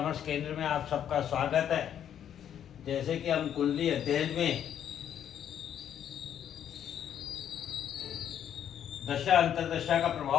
केंद्र में आप सबका स्वागत है। जैसे कि हम कुंडली अध्ययन में दशा अंतरदशा का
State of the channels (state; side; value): quieter; right; 9.6 dB